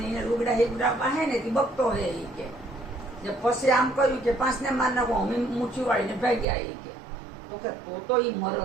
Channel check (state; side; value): drops out; left; at 6.5 s